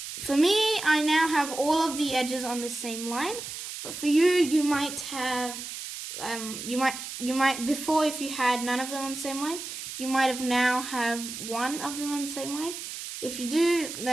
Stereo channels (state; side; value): noise; right; hiss, 8 dB below the sound